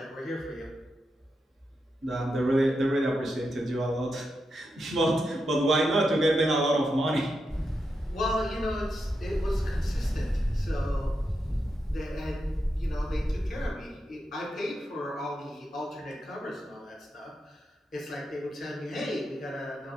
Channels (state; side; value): normal; both; correlation 0.86